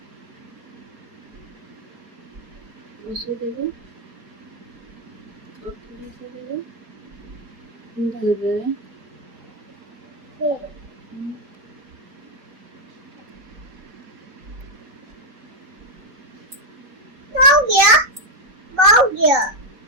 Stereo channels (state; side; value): late; left; 3.9 ms